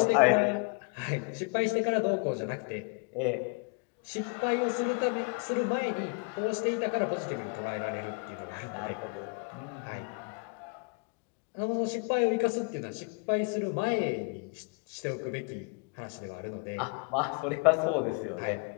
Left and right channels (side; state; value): right; quieter; 34.6 dB